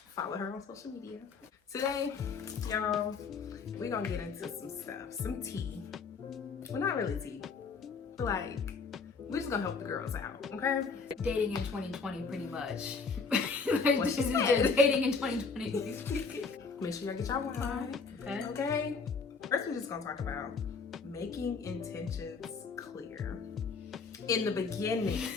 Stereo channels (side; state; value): right; quieter; 4.8 dB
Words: Follow her on social media. Today, y'all, we're gonna get into some stuff, some tea. Well, not really tea, but like we're just gonna help the girls out, okay? Dating in 2020, pretty much. What she said. Dating in 2020. Make sure y'all get y'all wine. Okay. First, we're just gonna talk about making intentions clear in the beginning.